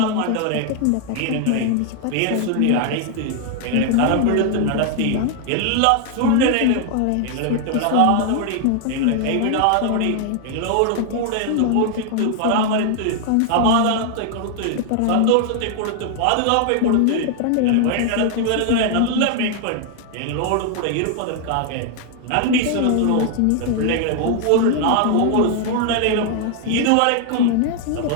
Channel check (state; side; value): different; both; correlation 0.00